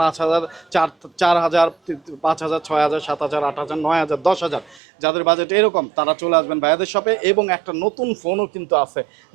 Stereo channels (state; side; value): drops out; left; at 4.8 s